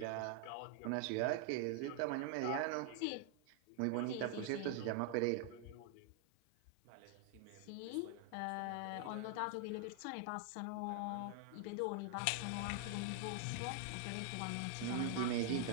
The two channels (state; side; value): different; both; correlation 0.00